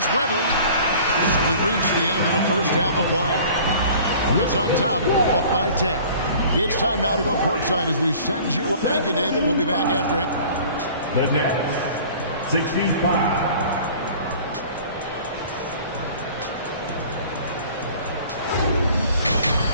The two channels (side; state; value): both; inverted; correlation -0.47